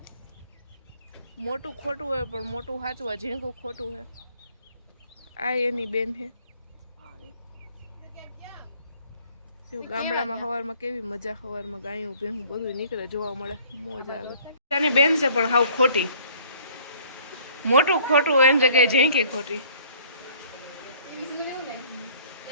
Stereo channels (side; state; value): both; inverted; correlation -0.56